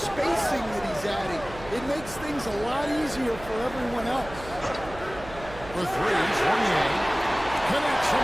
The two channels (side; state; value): right; noise; hum, 15 dB below the sound